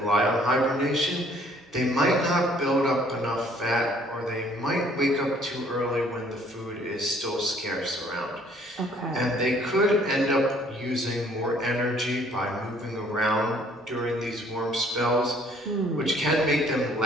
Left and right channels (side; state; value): both; normal; correlation 0.60